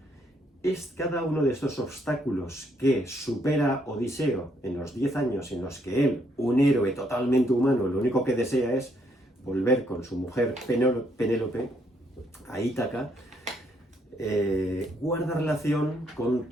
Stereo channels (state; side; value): normal; both; correlation 0.72